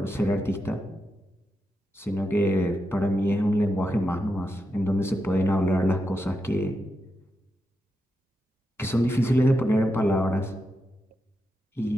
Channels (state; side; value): normal; both; correlation 0.86